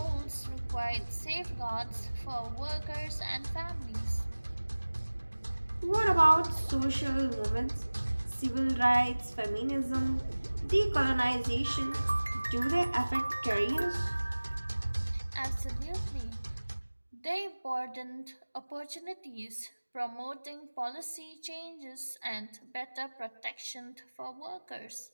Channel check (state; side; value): inverted; both; correlation -1.00